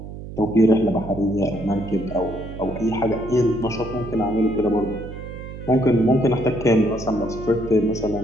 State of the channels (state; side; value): noise; right; hum, 11 dB below the sound